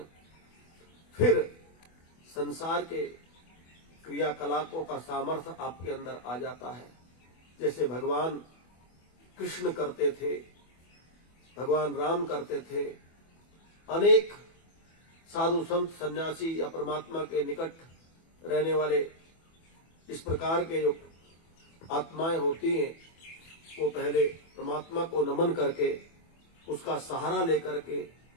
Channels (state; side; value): late; right; 24 ms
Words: फिर संसार के क्रियाकलापों का सामर्थ्य आपके अंदर आ जाता है। जैसे भगवान कृष्ण करते थे, भगवान राम करते थे, अनेक साधु संत सन्यासी या परमात्मा के निकट रहने वाले इस प्रकार के जो आत्माएं होती हैं, वो पहले परमात्मा को नमन करके, उसका सहारा लेकर के,